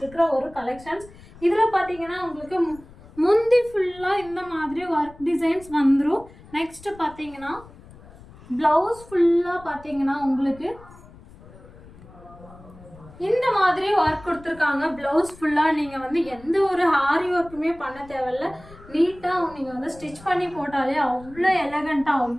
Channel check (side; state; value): left; noise; rumble, 21 dB below the sound